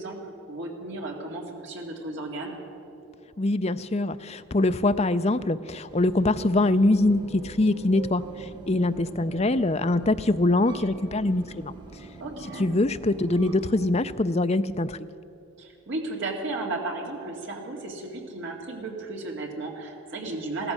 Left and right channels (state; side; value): normal; both; correlation 0.66